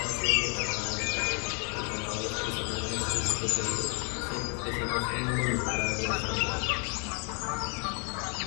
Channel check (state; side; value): quieter; right; 38.8 dB